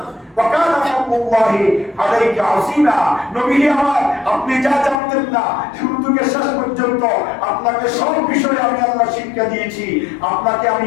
ওয়া কানা ফাদলুল্লাহি আলাইকা আযীমা। নবী আমার আপনি যা জানতেন না শুরু থেকে শেষ পর্যন্ত আপনাকে সব বিষয়ে আমি আল্লাহ শিক্ষা দিয়েছি, আপনাকে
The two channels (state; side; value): drops out; right; at 5.0 s